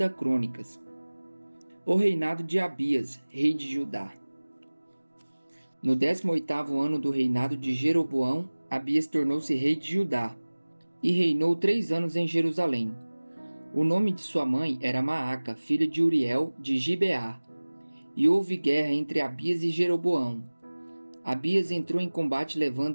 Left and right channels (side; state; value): both; inverted; correlation -1.00